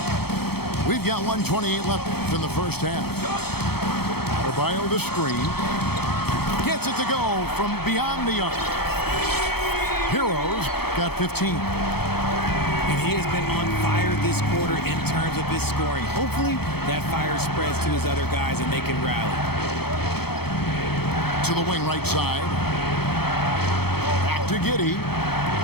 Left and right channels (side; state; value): right; late; 0.96 ms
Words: We've got 1:28 left in the first half. Adebayo the screen. Gets it to go from beyond the arc. Heroes got 15. And he has been on fire this quarter in terms of his scoring. Hopefully that fire spreads to his other guys and they can rally. To the wing right side. Back to Giddey.